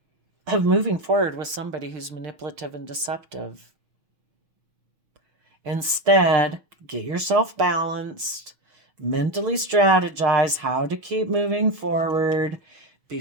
of moving forward with somebody who's manipulative and deceptive. Instead, get yourself balanced, mentally strategize how to keep moving forward, be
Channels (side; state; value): left; late; 6.3 ms